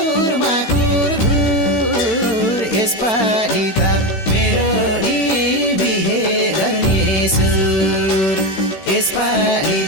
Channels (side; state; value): right; late; 16 ms